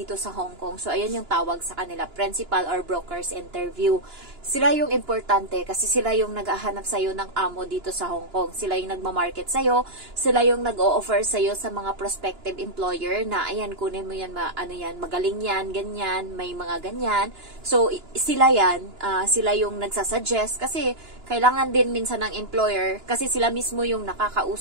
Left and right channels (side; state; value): left; late; 2.9 ms